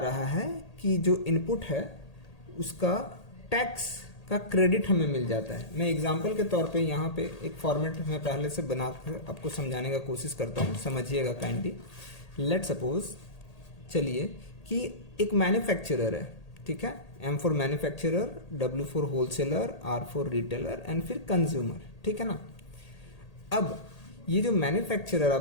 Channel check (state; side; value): late; right; 1.8 ms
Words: है कि जो इनपुट है उसका टैक्स का क्रेडिट हमें मिल जाता है। मैं एग्जांपल के तौर पे यहाँ पे एक फॉर्मेट में पहले से बनाकर आपको समझाने का कोशिश करता हूँ, समझिएगा काइंडली। लेट सपोज, चलिए कि एक मैन्युफैक्चरर है। ठीक है, M for manufacturer, W for wholesaler, R for retailer and फिर कंज्यूमर। ठीक है ना, अब ये जो मैन्युफैक्चरर